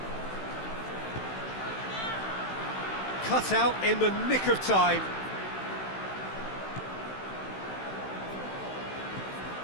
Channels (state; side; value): late; right; 16 ms